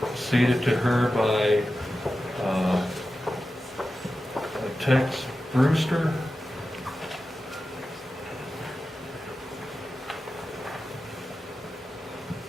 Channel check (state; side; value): normal; both; correlation 0.93